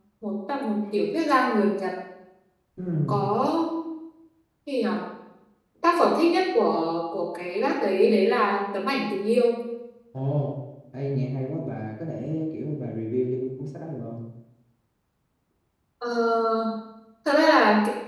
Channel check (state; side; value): identical; both; correlation 1.00